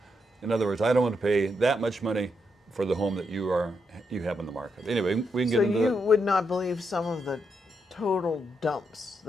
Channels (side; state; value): both; normal; correlation 0.81